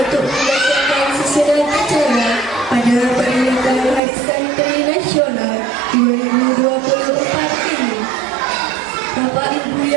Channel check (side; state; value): left; drops out; at 4.0 s